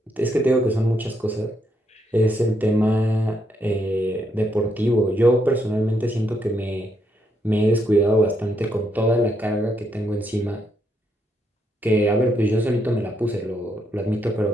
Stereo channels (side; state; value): both; normal; correlation 0.77